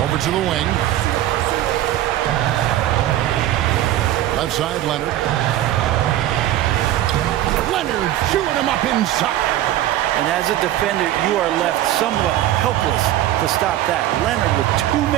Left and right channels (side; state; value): left; quieter; 13.4 dB